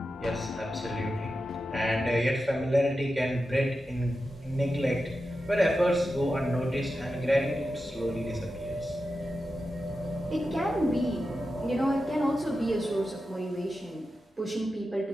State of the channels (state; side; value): normal; both; correlation 0.91